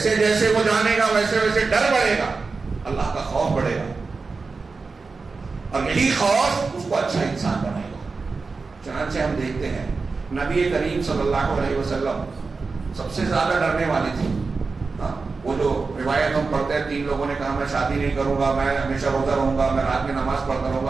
جیسے وہ جانے گا ویسے ویسے ڈر بڑھے گا، اللہ کا خوف بڑھے گا، اور یہی خوف اس کو اچھا انسان بنائے گا. چنانچہ ہم دیکھتے ہیں نبی کریم صلی اللہ علیہ وسلم سب سے زیادہ ڈرنے والی تھی. وہ جو روایت ہم پڑھتے ہیں، 3 لوگوں نے کہا میں شادی نہیں کروں گا، میں ہمیشہ روزہ رہوں گا، میں رات میں نماز پڑھتا رہوں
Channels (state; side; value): quieter; left; 4.3 dB